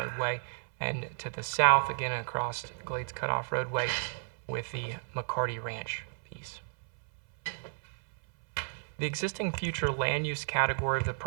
and to the south, again across Glades Cutoff Roadway with the McCarty Ranch piece. The existing future land use category of the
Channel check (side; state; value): left; silent; 56 dB below the other